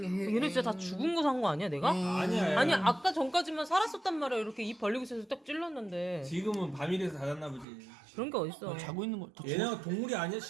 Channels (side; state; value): left; drops out; at 7.7 s